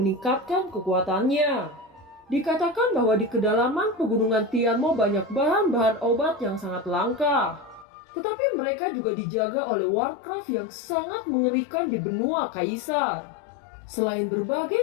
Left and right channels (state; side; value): drops out; right; at 7.9 s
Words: kekuatannya. Dikatakan bahwa di kedalaman pegunungan Tianmo banyak bahan-bahan obat yang sangat langka. Tetapi mereka juga dijaga oleh Warcraft yang sangat mengerikan di benua Kaisar. Selain